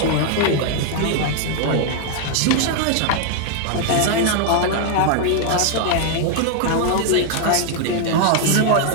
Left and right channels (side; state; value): both; different; correlation 0.00